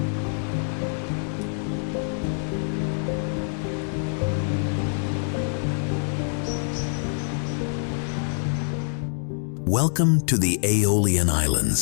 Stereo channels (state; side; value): silent; right; 58 dB below the other